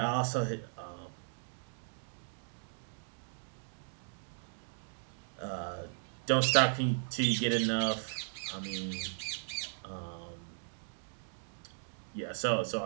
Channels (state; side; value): silent; left; digital silence